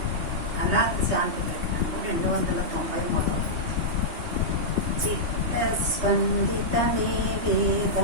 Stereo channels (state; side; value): late; left; 3.2 ms